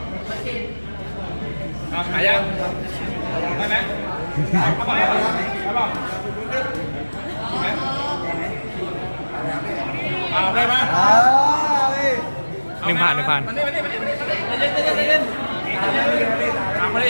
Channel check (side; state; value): both; inverted; correlation -1.00